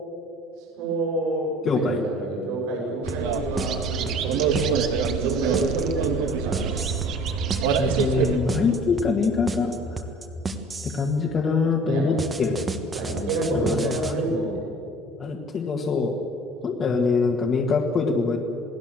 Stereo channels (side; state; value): both; normal; correlation 0.49